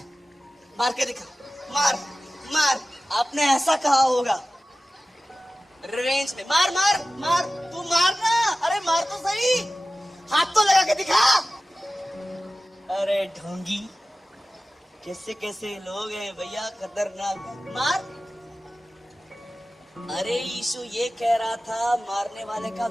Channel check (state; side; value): normal; both; correlation 0.96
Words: मार के दिखा, मार मार, आपने ऐसा कहा होगा रिवेंज में, मार मार मार, तू मारना, अरे मार तो सही, हाथ तो लगा के दिखा। अरे ढोंगी, कैसे कैसे लोग हैं भैया, खतरनाक, मार। अरे यीशु ये कह रहा था मारने वाले का